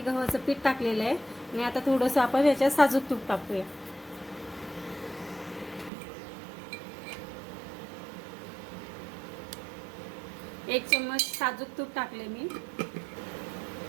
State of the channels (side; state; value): left; drops out; at 5.9 s